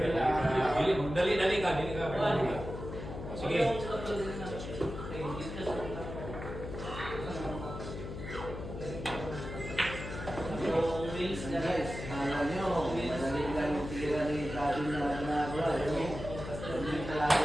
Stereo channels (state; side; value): noise; left; hum, 8 dB below the sound